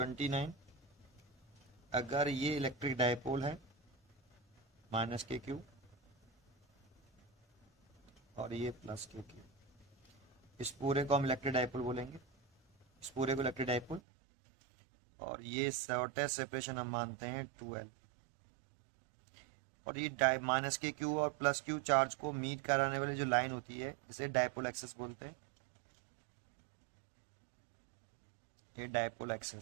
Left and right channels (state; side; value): drops out; left; at 14.0 s